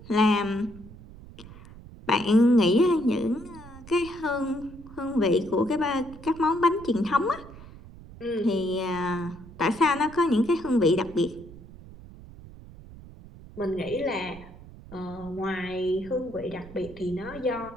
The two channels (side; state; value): right; noise; rumble, 18 dB below the sound